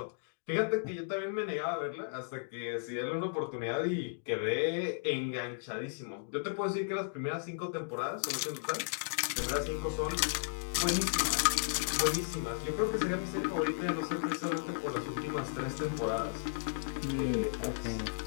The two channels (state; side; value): silent; right; digital silence